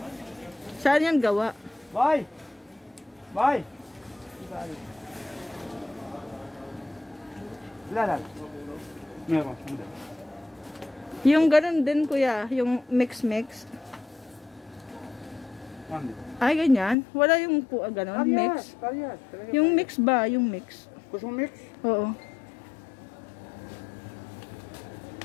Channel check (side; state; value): right; drops out; at 16.9 s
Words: Saan yan gawa? Bye! Bye! Wala. Meron. Hindi. Yung ganun din kuya, yung mix. One din. Ay, ganyan. Wala yung ganun, mix. Parehas. Yung mix ba? Yung mix. Gusto mo mix? Oo.